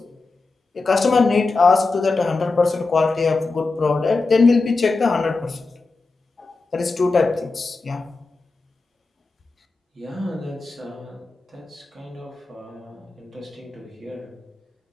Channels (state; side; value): quieter; right; 3.7 dB